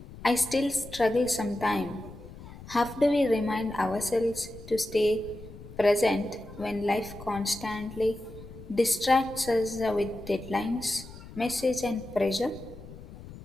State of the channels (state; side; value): noise; left; rumble, 16 dB below the sound